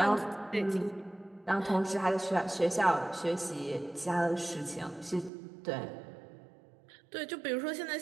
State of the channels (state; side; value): drops out; left; at 5.3 s